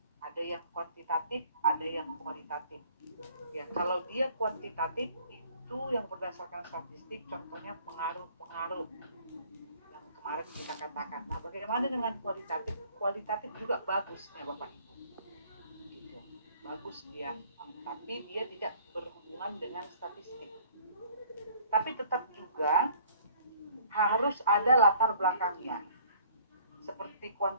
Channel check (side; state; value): both; inverted; correlation -0.55